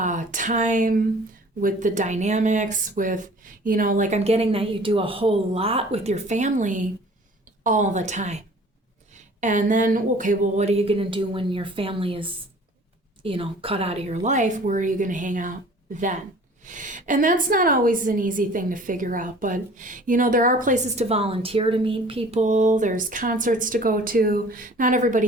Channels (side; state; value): both; normal; correlation 0.48